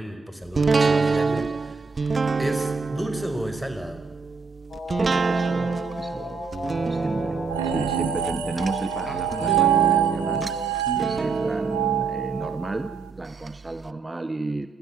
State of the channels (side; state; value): left; quieter; 4.8 dB